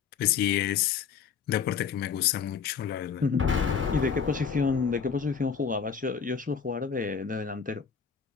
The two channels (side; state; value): right; quieter; 6.5 dB